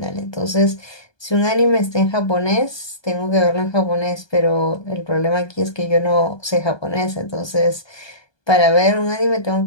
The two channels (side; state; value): right; late; 1.2 ms